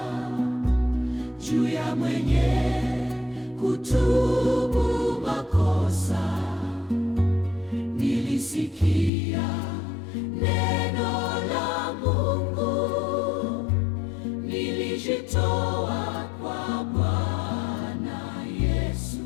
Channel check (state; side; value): drops out; right; at 9.1 s